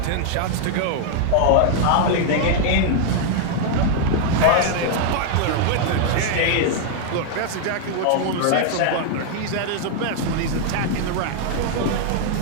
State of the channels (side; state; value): both; different; correlation 0.00